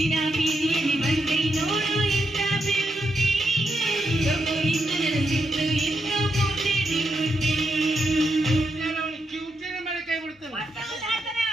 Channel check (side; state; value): both; normal; correlation 0.82